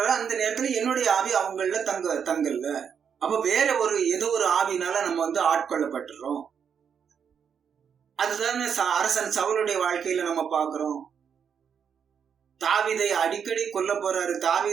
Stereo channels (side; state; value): left; quieter; 7.3 dB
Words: அந்த நேரத்துல என்னுடைய ஆவி அவங்கள தங்கல்ல. அப்ப வேற ஏதோ ஒரு ஆவினால நம்ம ஆட்கொள்ளப்பட்டுறோம். அதுதான் அரசன் சவுலுடைய வாழ்க்கையில நம்ம பாக்குறோம். தாவீதை அடிக்கடி கொல்ல போறாரு.